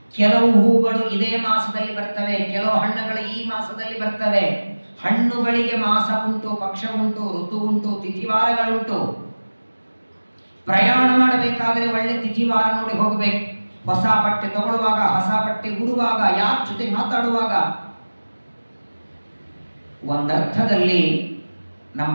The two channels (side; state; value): both; inverted; correlation -1.00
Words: ಕೆಲವು ಹೂಗಳು ಇದೇ ಮಾಸದಲ್ಲಿ ಬರ್ತವೆ, ಕೆಲವು ಹಣ್ಣುಗಳು ಈ ಮಾಸದಲ್ಲಿ ಬರ್ತವೆ. ಹಣ್ಣುಗಳಿಗೆ ಮಾಸ ಉಂಟು, ಪಕ್ಷ ಉಂಟು, ಋತು ಉಂಟು, ತಿಥಿವಾರಗಳುಂಟು. ಪ್ರಯಾಣ ಮಾಡಬೇಕಾದ್ರೆ ಒಳ್ಳೆ ತಿಥಿವಾರ ನೋಡಿ ಹೋಗಬೇಕು. ಹೊಸ ಬಟ್ಟೆ ತಗೊಳ್ಳುವಾಗ, ಹೊಸ ಬಟ್ಟೆ ಉಡುವಾಗ, ಯಾರ ಜೊತೆ ಮಾತಾಡುವಾಗ. ಒಂದರ್ಥದಲ್ಲಿ